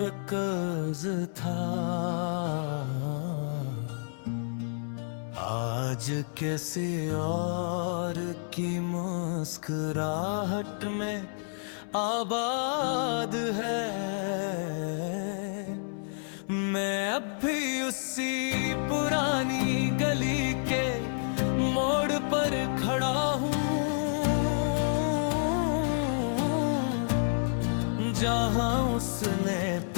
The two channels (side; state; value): right; silent; 58 dB below the other